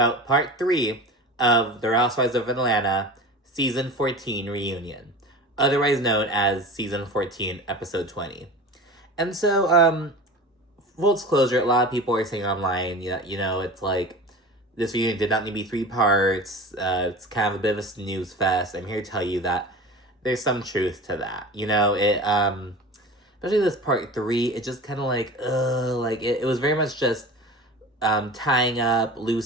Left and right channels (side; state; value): both; normal; correlation 0.35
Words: part 3 of The Housewives of Atlanta Season 14 Reunion, otherwise known as Season 14, Episode 20. And so, full disclosure, a lot of people are saying online, it's like, this reunion did not need to be 3 parts, it's kind of a bit of a snooze fest. I'm here to tell you that there's some truth to that. Especially this part 3, it just kind of it was very much just tying up